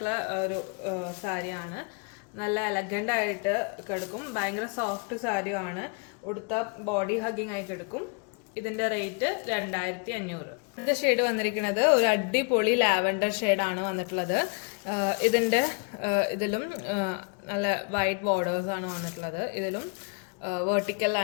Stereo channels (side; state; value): right; quieter; 35.5 dB